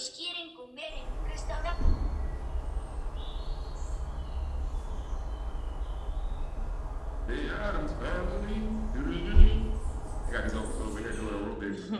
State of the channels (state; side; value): identical; both; correlation 1.00